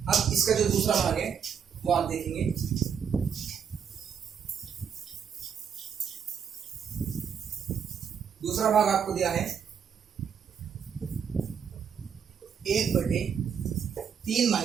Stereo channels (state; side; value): quieter; left; 7.4 dB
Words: अब इसका जो दूसरा भाग है वो आप देखेंगे। दूसरा भाग आपको दिया है 1/3